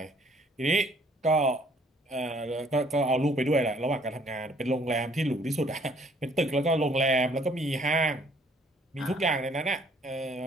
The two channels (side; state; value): both; normal; correlation 0.61